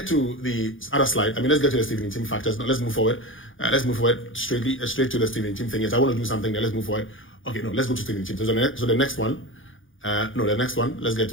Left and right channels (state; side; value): late; right; 0.58 ms